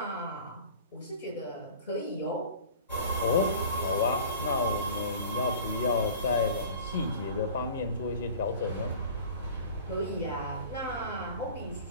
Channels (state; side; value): inverted; both; correlation -0.42